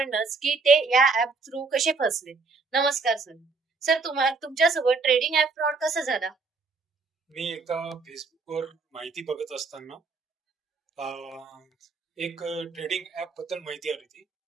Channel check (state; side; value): quieter; left; 4.3 dB